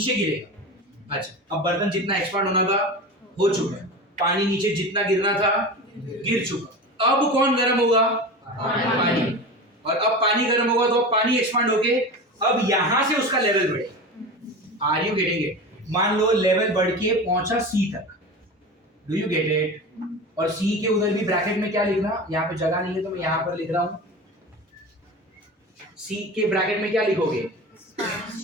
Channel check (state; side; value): normal; both; correlation 0.29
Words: गिरेगा। अच्छा, अब बर्तन जितना एक्सपांड होना था हो चुका है, पानी नीचे जितना गिरना था गिर चुका। अब कौन गर्म होगा? पानी। और अब पानी गर्म होगा तो अब पानी एक्सपांड होके अब यहां से उसका लेवल बढ़ेगा। Are you getting it? मान लो लेवल बढ़ के पहुंचा सी तक, डू यू गेट इट? और सी के उधर भी ब्रैकेट में क्या लिखना, यहाँ पे जगह नहीं है तो मैं यहाँ पर लिख रहा हूं, सी के ब्रैकेट में क्या लिखोगे?